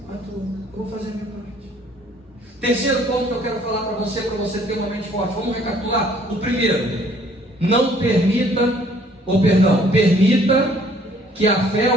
Eu vou fazer a minha parte. Terceiro ponto que eu quero falar para você ter uma mente forte. Vamos recapitular. O primeiro: não permita que a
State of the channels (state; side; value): normal; both; correlation 0.59